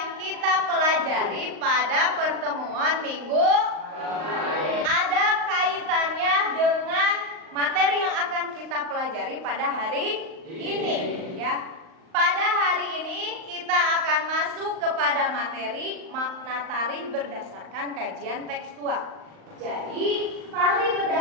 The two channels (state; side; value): late; left; 38 ms